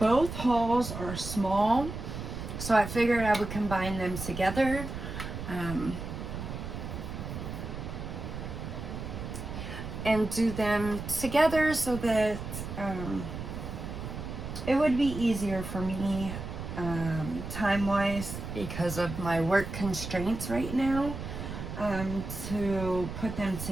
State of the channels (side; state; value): right; noise; rumble, 7 dB below the sound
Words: hauls are small, so I figured I would combine them together. And do them together so that it would be easier for me time-wise because of my work constraints right now to put them